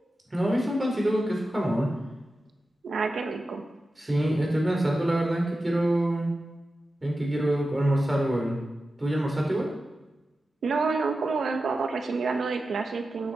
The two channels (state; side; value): normal; both; correlation 0.93